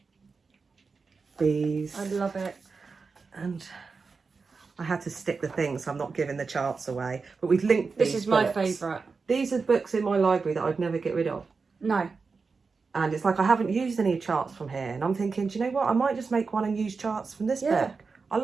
bees. I love it. And I had to stick the things, so I'm not giving the charts away. But we've linked these. This is my favourite. These are books in my library that I'd never get rid of. No. And it's like I haven't used any charts from here. And I'm thinking, do you know what? I might just make one and use charts from this book. I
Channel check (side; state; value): left; quieter; 4.7 dB